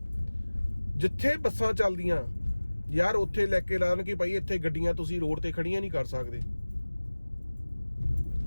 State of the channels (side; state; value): both; inverted; correlation -1.00